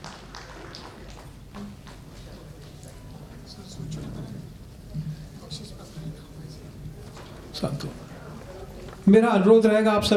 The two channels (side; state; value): both; identical; correlation 1.00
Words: मेरा अनुरोध रहेगा आप